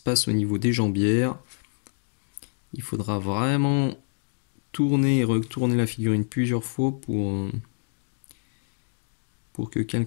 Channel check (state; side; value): silent; right; digital silence